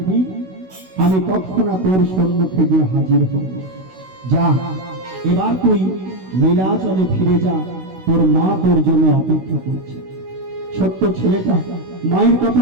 আমি তৎক্ষণাৎ তোর সম্মুখে গিয়ে হাজির হব। যা, এবার তুই নীলাচলে ফিরে যা, তোর মা তোর জন্য অপেক্ষা করছে। ছোট্ট ছেলেটা মায়ের কথা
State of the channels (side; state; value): left; late; 16 ms